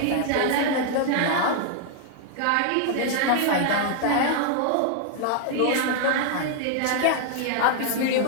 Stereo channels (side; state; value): both; different; correlation 0.00